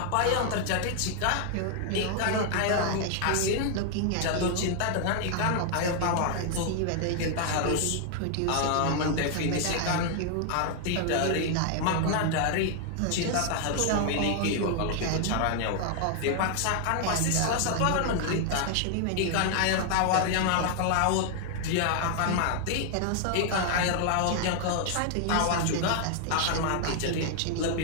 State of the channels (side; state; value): both; different; correlation 0.00